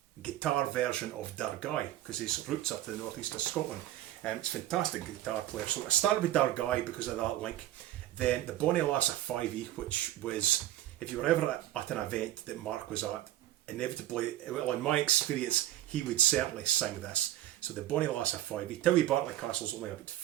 guitar version of Dargai because his roots are to the northeast of Scotland. It's a fantastic guitar player. So I started with Dargai because of that link. Then the Bonnie Lass of 5e, which was, if you were ever at an event that Mark was at, inevitably, well, in my experience, he would certainly sing this. So the Bonnie Lass of 5e. Towie Barclay Castle's only about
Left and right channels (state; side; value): quieter; left; 13.6 dB